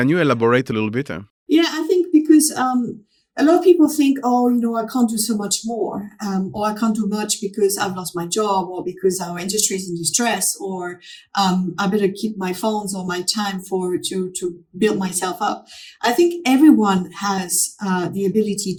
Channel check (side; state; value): both; identical; correlation 1.00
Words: you elaborate a little bit? Yeah, I think because a lot of people think, I can't do so much more, or I can't do much because I've lost my job, or because our industry is in distress, or I better keep my funds or my time to build myself up. I think everyone has the ability